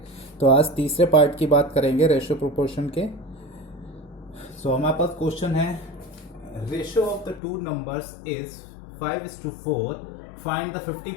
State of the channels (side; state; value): right; drops out; at 7.4 s